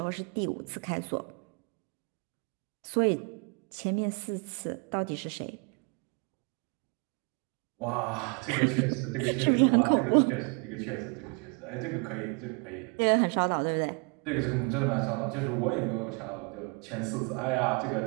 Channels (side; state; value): left; quieter; 33.8 dB